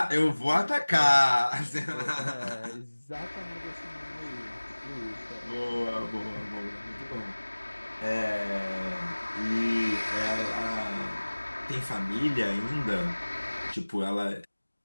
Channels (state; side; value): inverted; both; correlation -1.00